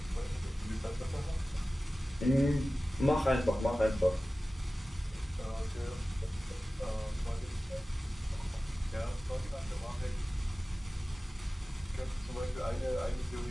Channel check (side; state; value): both; normal; correlation 0.96